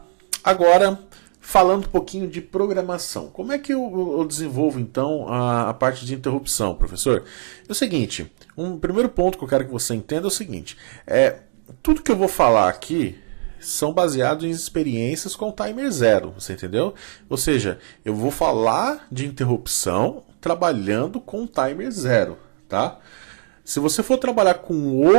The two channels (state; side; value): silent; left; digital silence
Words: Agora, falando um pouquinho de programação. Como é que eu desenvolvo, então, a parte de interrupção, professor? É o seguinte, um primeiro ponto que eu quero que você entenda é o seguinte, tudo que eu vou falar aqui são baseados em experiências com o timer 0, você entendeu? Ou seja, eu vou falar de interrupção trabalhando com o timer 0, tá? Se você for trabalhar com